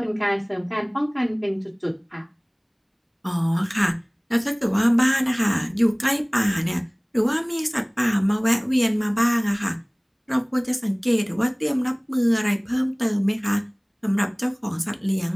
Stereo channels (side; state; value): both; identical; correlation 1.00